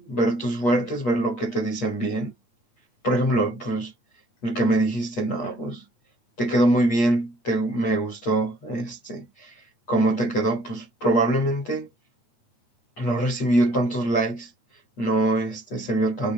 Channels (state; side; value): late; right; 8.5 ms